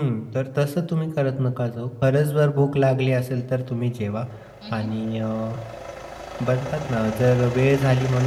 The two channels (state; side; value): identical; both; correlation 1.00